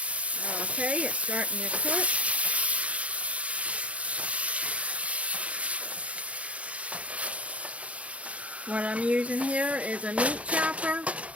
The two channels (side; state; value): left; late; 0.064 ms